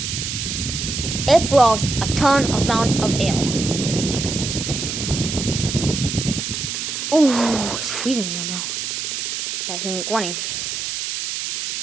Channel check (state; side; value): noise; right; hiss, 4 dB below the sound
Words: It blows a ton of amount of air. Ooh, it's freezing here now. That thing going.